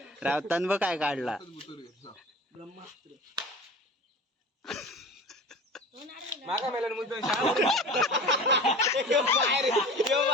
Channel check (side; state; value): both; normal; correlation 0.37